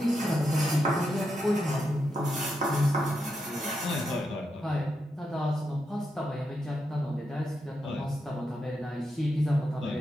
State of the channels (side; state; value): both; normal; correlation 0.84